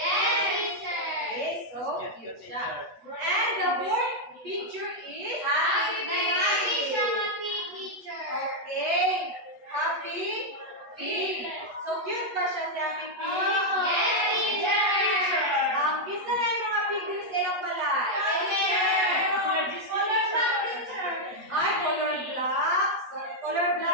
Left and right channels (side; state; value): left; late; 8.2 ms